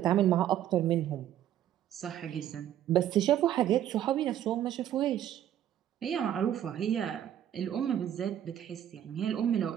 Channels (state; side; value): quieter; left; 11.2 dB